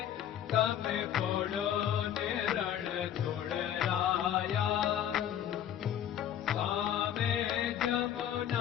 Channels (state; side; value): quieter; right; 10.2 dB